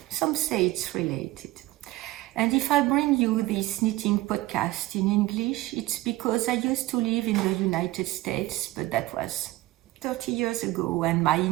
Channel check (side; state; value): left; quieter; 18.0 dB